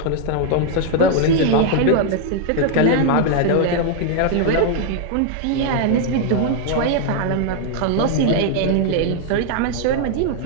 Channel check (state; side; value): different; both; correlation 0.00